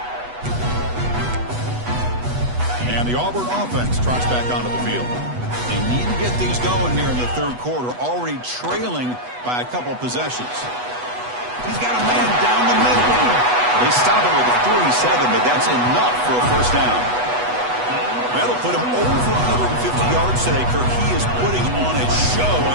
And the Auburn offense trots back onto the field. They need to get things going here in the 3rd quarter, already trailing by a couple possessions. He's got a man down the middle. They stop him at the 47, but that's enough for a 1st down. That'll put him over 150 yards today, Kirk. He is putting on a show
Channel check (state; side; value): late; left; 8.1 ms